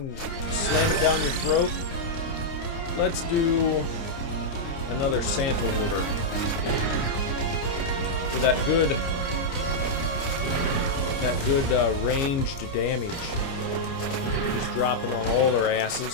slam it down your throat. Let's do another Santa order. For that good ranged damage. Just dropping on all their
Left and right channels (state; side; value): late; right; 29 ms